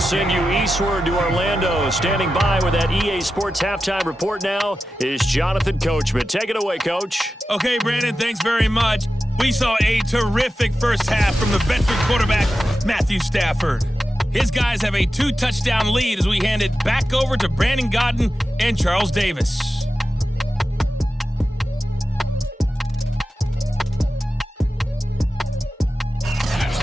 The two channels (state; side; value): normal; both; correlation 0.92